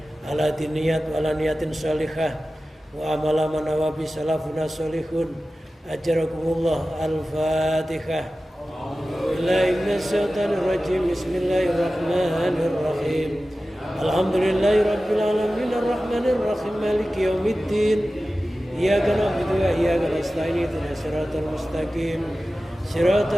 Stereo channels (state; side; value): normal; both; correlation 0.95